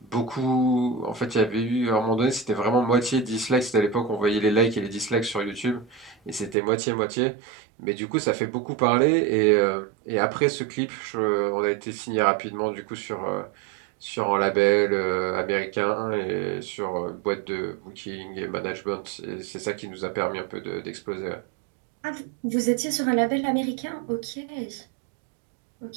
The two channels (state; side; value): drops out; left; at 6.6 s